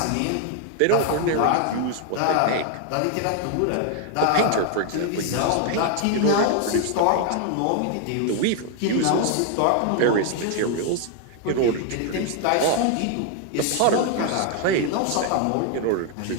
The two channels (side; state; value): both; different; correlation 0.00